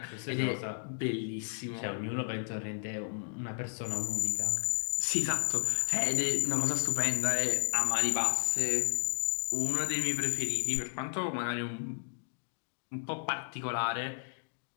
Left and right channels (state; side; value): silent; right; digital silence